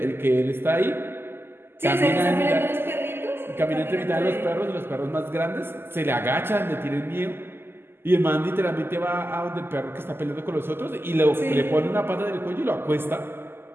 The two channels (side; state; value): left; late; 0.11 ms